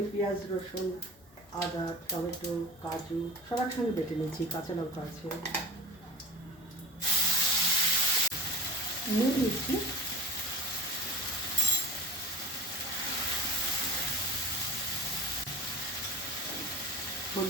পেঁয়াজ, রসুন, আদা, টমেটো, কাজু সব একসঙ্গে বেটে নিচ্ছি, কাঁচা লঙ্কা আছে, নুন দিচ্ছি,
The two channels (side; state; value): both; normal; correlation 0.38